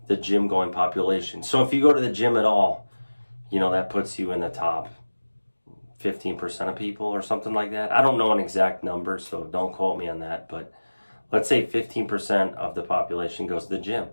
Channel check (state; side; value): inverted; both; correlation -1.00